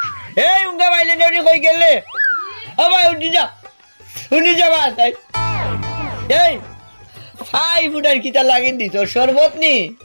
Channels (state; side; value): inverted; both; correlation -1.00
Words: এই উঙ্গা বাইলে নেউনি কই গেলে ও ভাই উঠি যা বা তাই এই ফাই ফুটার কিতা লাগিন দিছ শরবত নি